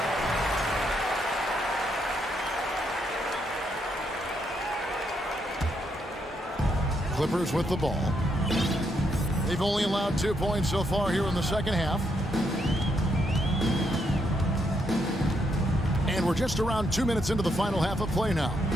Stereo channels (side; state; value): both; normal; correlation 0.77